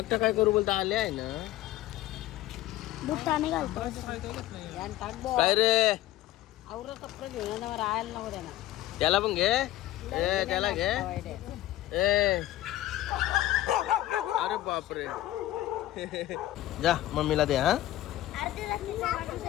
काय करू बोलता आले आहे ना. बुट्टाने घालतो. काय रे कपडे घेऊन राहायला नको त्यांना. त्याला पण घे. ए त्याला घे. ए अरे बापरे. जा मम्मीला दे. हा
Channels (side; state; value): right; quieter; 15.0 dB